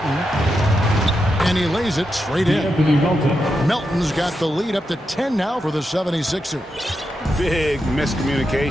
And he lays it straight in. Melton's got the lead up to 10 now for the 76ers. Big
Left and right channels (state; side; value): normal; both; correlation 0.86